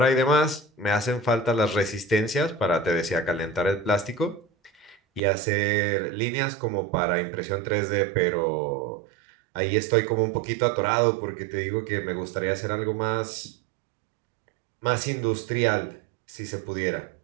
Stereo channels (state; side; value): drops out; left; at 5.2 s